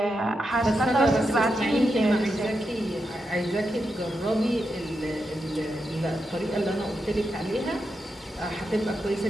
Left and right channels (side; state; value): both; normal; correlation 0.86